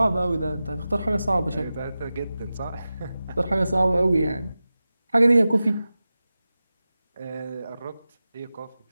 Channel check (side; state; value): both; inverted; correlation -0.94